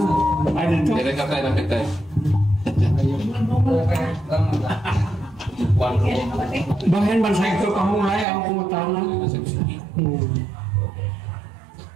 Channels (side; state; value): left; drops out; at 8.2 s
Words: Ay, dito. Jadi kata yang kita. Bahin man sa ito kahulay ang pumutana.